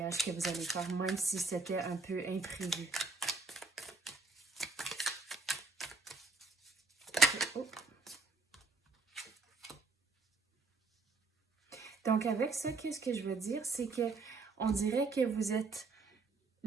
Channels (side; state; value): left; quieter; 4.1 dB